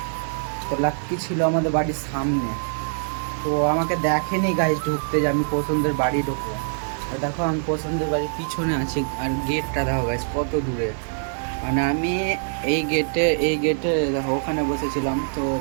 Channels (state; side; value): silent; left; digital silence